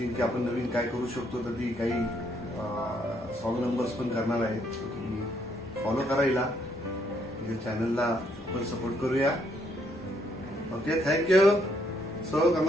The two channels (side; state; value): both; normal; correlation 0.71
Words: की आपण नवीन काय करू शकतो, तर ती काही सॉन्ग नंबर्स पण करणार आहे। तुम्ही फॉलो करा हिला, या चॅनलला आपण सपोर्ट करूया। Okay, thank you. So